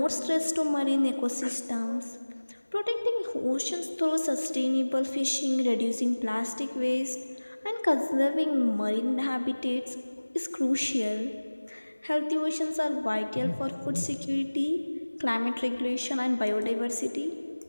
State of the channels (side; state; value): both; inverted; correlation -1.00